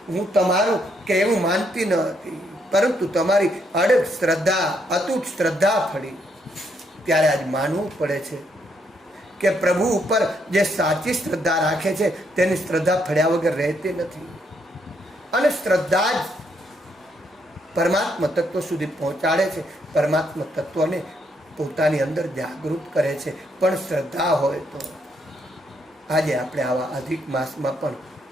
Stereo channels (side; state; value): both; normal; correlation 0.74